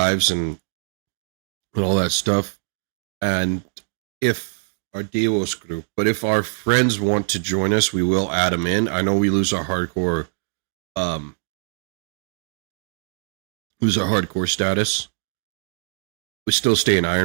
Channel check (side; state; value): left; silent; digital silence